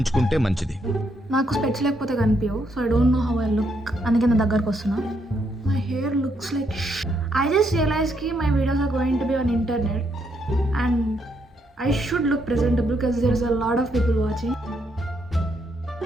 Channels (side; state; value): both; normal; correlation 0.76